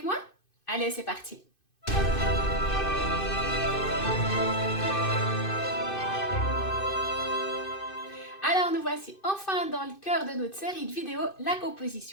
moi? Allez, c'est parti. Alors, nous voici enfin dans le cœur de notre série de vidéos, la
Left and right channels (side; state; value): right; late; 2.5 ms